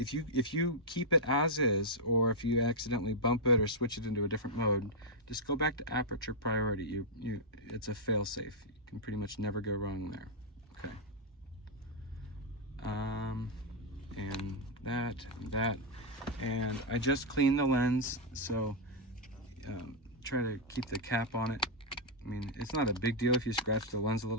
you keep it as is, or if you accidentally bump it or switch it into a different mode, just go back to aperture priority. It's a fail-safe. You can pretty much never go wrong there. Okay. And that, and I just cleaned the lens, so try to keep the cap on it. I mean, it's not a big deal if you scratch the lens a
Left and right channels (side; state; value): both; normal; correlation -0.04